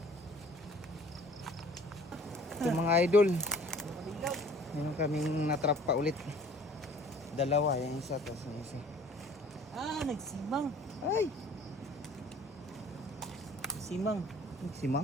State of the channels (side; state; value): both; normal; correlation 0.51